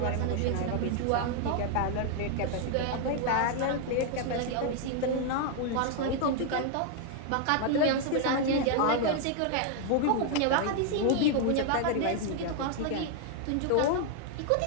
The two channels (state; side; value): different; both; correlation 0.00